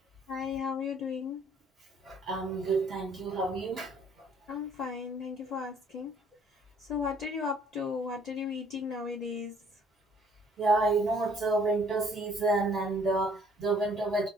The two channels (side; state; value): both; normal; correlation 0.60